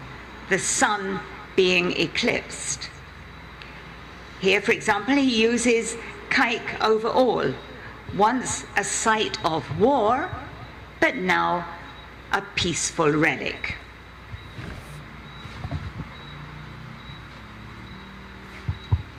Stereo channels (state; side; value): identical; both; correlation 1.00